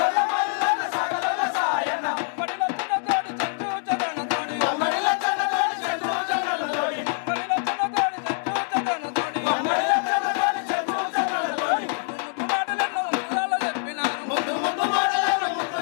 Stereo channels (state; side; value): silent; right; digital silence